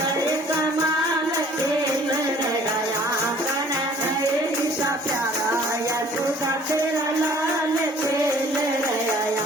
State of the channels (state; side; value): normal; both; correlation 0.54